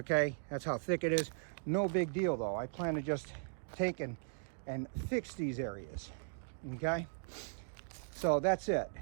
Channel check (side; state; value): left; silent; digital silence